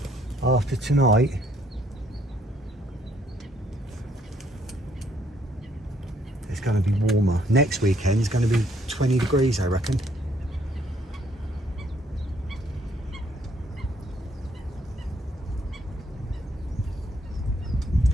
after tonight it's going to be warmer. Next weekend is going to be 20 degrees, I reckon.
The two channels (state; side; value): normal; both; correlation 0.68